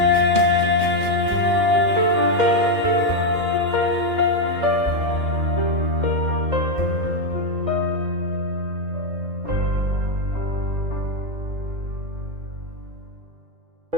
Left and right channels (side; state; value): left; late; 2.4 ms